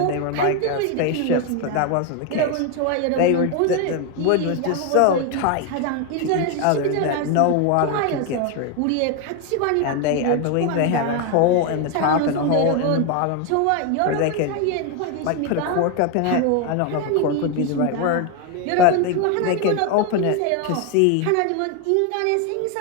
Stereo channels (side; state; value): both; different; correlation 0.01